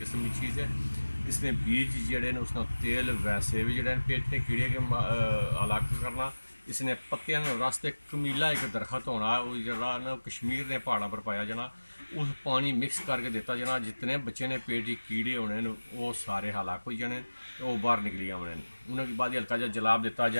की चीज़ है। इसने बीज जोड़े ने उसका तेल वैसे भी जोड़े पेट ने कीड़े के अलग करना। इसने पत्तियां रास्ते कमीला एक दरखत होना जरा ना कश्मीर ने पहाड़ों पर पाया जाना, उस पानी मिक्स करके दिता जाना। जितने बच्चे ने पेट के कीड़े होने वो सारे हलाक हो जाने, वो बाहर निकली आने। उन्होंने बाद हल्का जहा जलाब दिता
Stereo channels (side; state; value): both; inverted; correlation -1.00